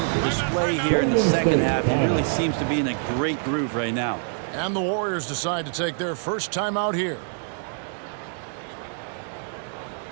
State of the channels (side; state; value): left; silent; digital silence